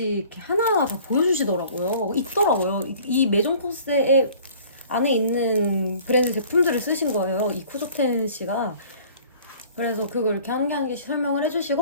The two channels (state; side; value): inverted; both; correlation -0.50